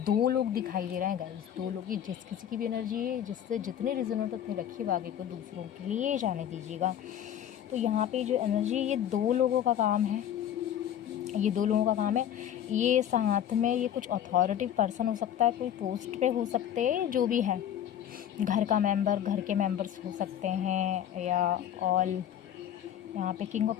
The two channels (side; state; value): right; quieter; 10.2 dB